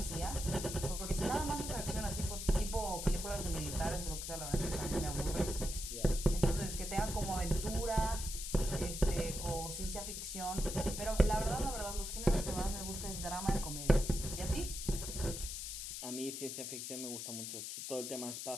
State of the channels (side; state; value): left; noise; hiss, 6 dB below the sound